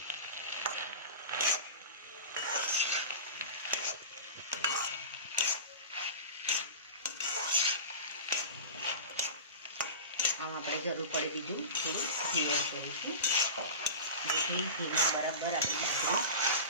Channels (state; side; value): inverted; both; correlation -0.30